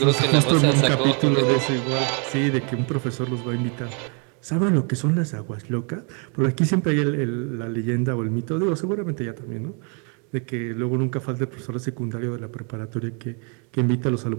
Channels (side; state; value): left; quieter; 37.5 dB